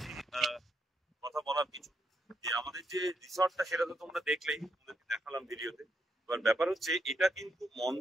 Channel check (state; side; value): normal; both; correlation 0.79